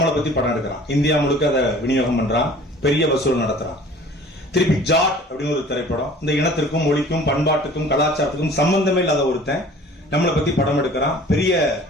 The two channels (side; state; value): both; normal; correlation 0.48